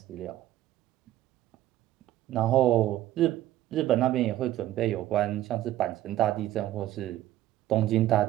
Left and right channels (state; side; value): quieter; left; 14.2 dB